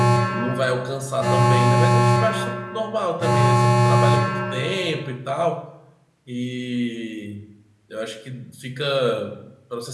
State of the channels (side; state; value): both; identical; correlation 1.00